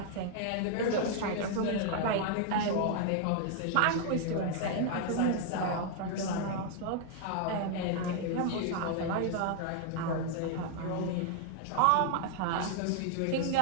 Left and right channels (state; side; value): different; both; correlation 0.00